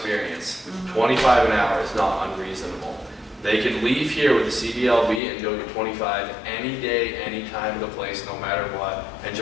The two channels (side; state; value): right; drops out; at 5.2 s